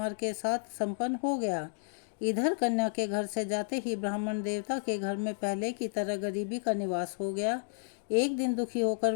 के साथ संपन्न हो गया। इधर कन्या के घर से जाते ही ब्राह्मण देवता के घर में पहले की तरह गरीबी का निवास हो गया। एक दिन दुखी होकर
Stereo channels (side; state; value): right; silent; digital silence